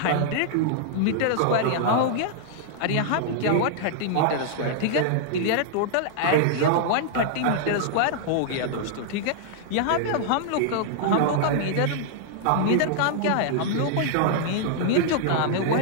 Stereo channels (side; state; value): both; different; correlation -0.01